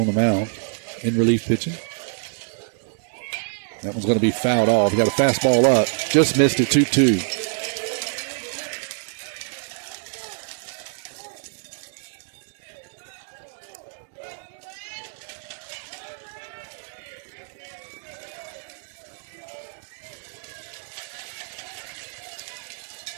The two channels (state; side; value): silent; left; digital silence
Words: the mound in relief pitching. That one's going to be fouled off. He got a fastball up. Just missed it, 2-2.